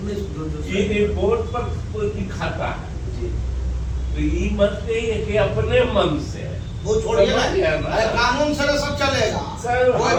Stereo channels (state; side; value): identical; both; correlation 1.00